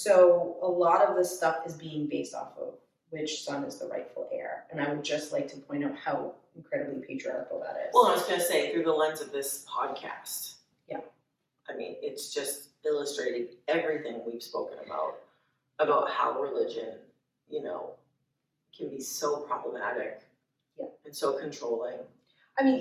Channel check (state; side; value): identical; both; correlation 1.00